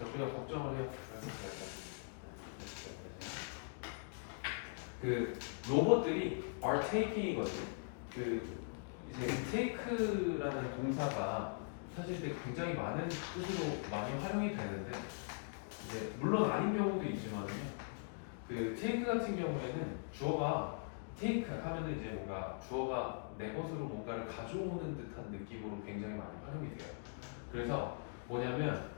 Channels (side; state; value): right; silent; digital silence